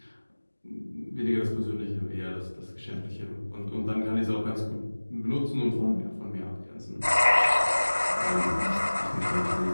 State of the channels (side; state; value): both; inverted; correlation -1.00